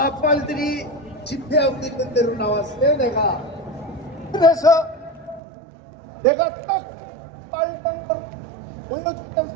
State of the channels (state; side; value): drops out; left; at 5.4 s